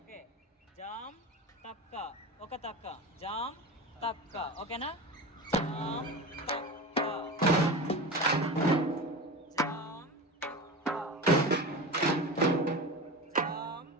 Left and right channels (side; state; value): both; normal; correlation 0.27